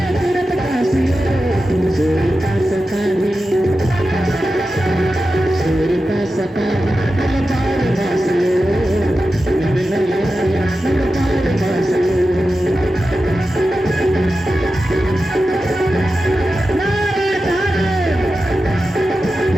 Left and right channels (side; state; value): both; normal; correlation 0.92